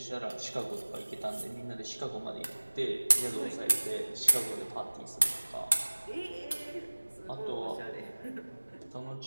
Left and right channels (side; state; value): both; inverted; correlation -1.00